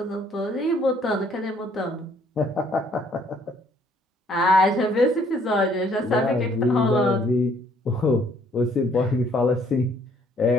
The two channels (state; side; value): normal; both; correlation 0.63